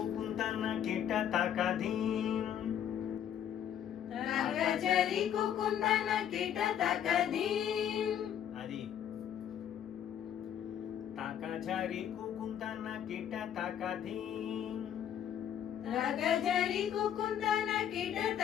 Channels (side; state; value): right; quieter; 9.7 dB